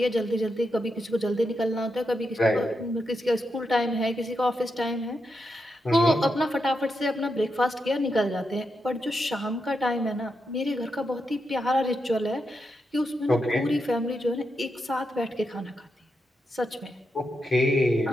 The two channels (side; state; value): both; normal; correlation 0.85